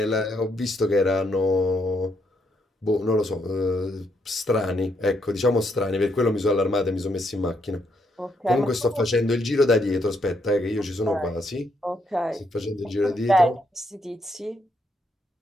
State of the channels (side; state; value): both; normal; correlation 0.76